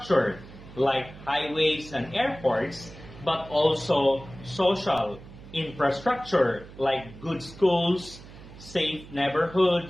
like highways and airports, but also social infrastructure like good schools, safe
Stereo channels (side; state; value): right; noise; hum, 18 dB below the sound